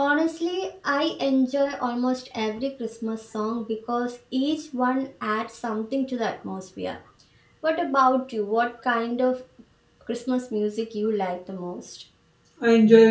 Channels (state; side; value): identical; both; correlation 1.00